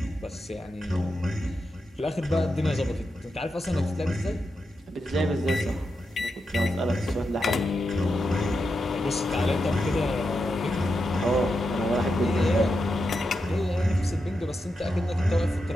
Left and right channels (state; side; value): normal; both; correlation 0.87